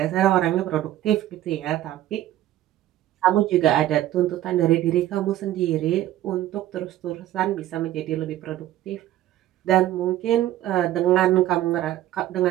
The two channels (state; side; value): quieter; left; 13.7 dB